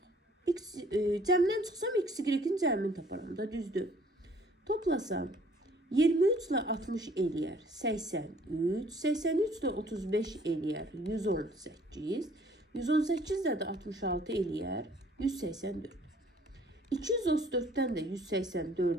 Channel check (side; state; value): both; normal; correlation 0.58